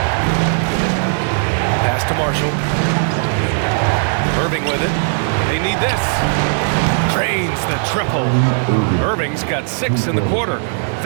Pass to Marshall. Irving with it. They need this. Drains the triple. Irving's got 6 in the quarter.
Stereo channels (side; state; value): left; silent; 68 dB below the other